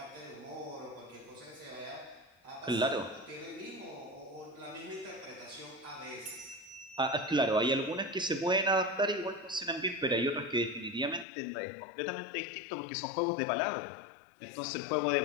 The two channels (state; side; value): drops out; right; at 11.2 s